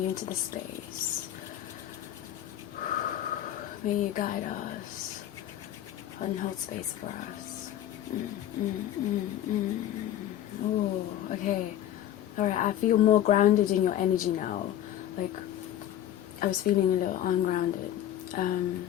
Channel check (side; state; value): right; quieter; 11.9 dB